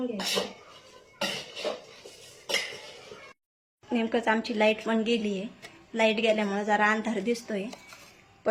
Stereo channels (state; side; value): identical; both; correlation 1.00